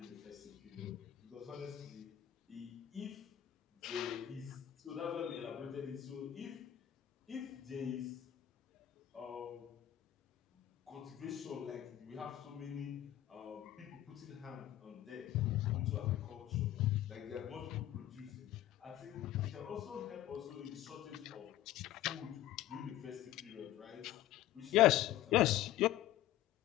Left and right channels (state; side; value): quieter; right; 13.2 dB